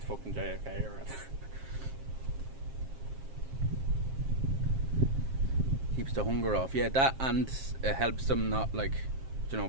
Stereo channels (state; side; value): late; left; 7.5 ms